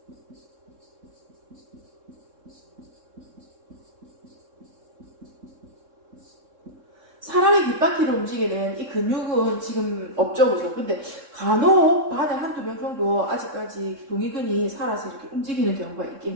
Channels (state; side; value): late; left; 3.6 ms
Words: 사람의 귓바퀴를 움직이는 이 근육은 지금 없죠, 그죠? 근데 간혹 반에 한두 명 정도 아직까지 동의근이 살아서 이렇게 움직이는 경우가